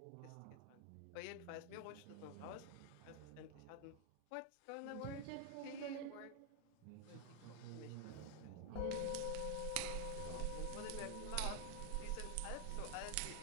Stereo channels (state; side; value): different; both; correlation 0.00